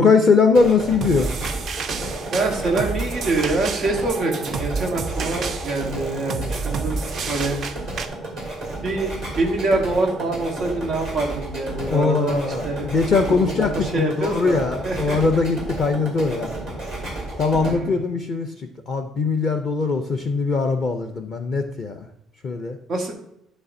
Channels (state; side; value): normal; both; correlation 0.66